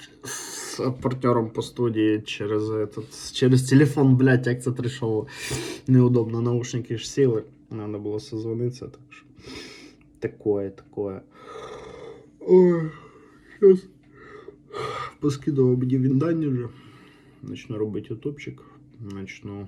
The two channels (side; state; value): both; identical; correlation 1.00